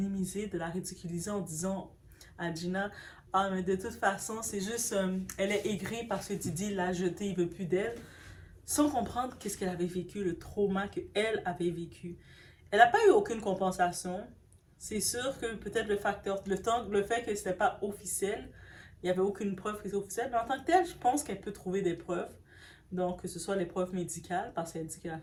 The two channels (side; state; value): both; identical; correlation 1.00